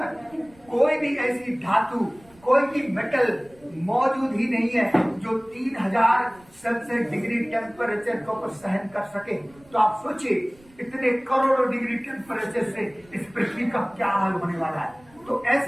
कोई भी ऐसी धातु, कोई भी मेटल मौजूद ही नहीं है जो 3000 सेल्सियस डिग्री टेम्परेचर को सहन कर सके। तो आप सोचिए इतने करोड़ों डिग्री टेम्परेचर से इस पृथ्वी का क्या हाल होने वाला है। तो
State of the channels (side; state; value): right; noise; rumble, 28 dB below the sound